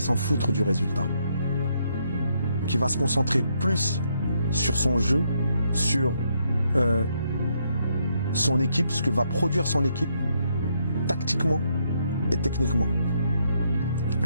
s'en foutre du résultat, qui va se concentrer plus sur son jeu, sur son équipe, ce que va produire son équipe, tactiquement et techniquement.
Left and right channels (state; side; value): inverted; both; correlation -0.75